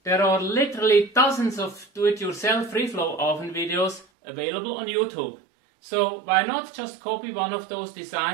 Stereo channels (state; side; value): drops out; left; at 4.0 s